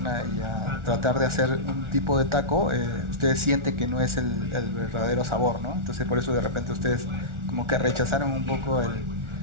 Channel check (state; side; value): late; left; 1.4 ms